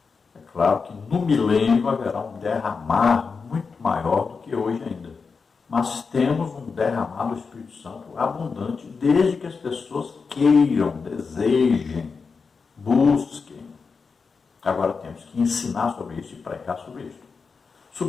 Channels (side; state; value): right; quieter; 5.0 dB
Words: É claro que no milênio haverá um derramar muito maior do que hoje ainda. Mas temos um derramar do Espírito Santo abundante, desde que as pessoas queiram, desejem, busquem. Agora temos que ensinar sobre isso e pregar sobre isso.